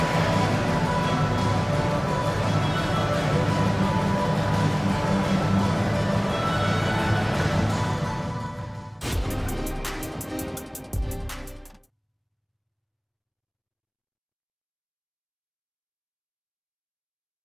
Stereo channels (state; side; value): identical; both; correlation 1.00